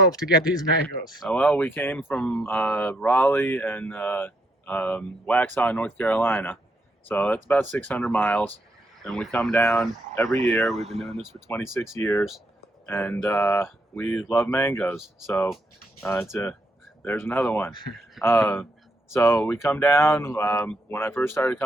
to get these mangoes. Well, we came from Raleigh and Waxhaw, North Carolina. So that's about 600 miles. And we come down every year. We've been doing this for 26 years. And we love mangoes. So there's another one. So we come down. When I first started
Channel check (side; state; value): both; normal; correlation 0.76